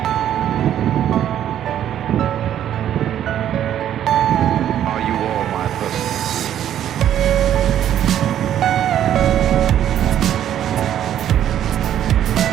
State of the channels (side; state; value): left; quieter; 10.7 dB